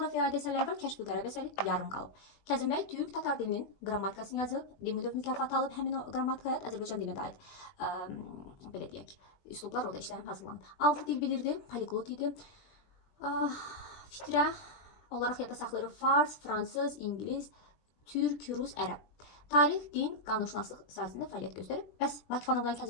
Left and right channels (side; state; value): right; late; 20 ms